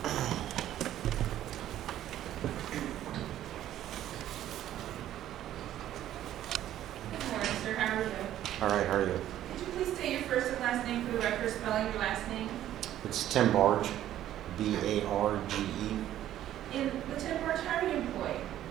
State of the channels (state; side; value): quieter; left; 12.3 dB